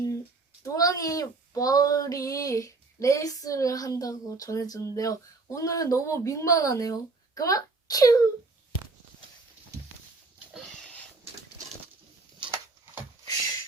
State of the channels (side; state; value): left; quieter; 3.7 dB